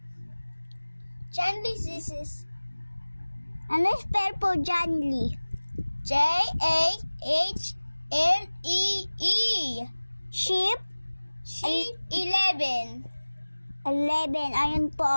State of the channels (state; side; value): inverted; both; correlation -1.00